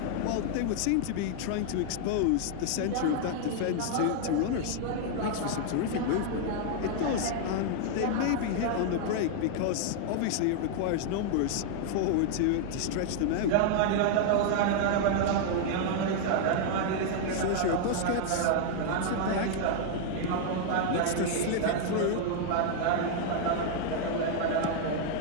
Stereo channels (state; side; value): different; both; correlation 0.00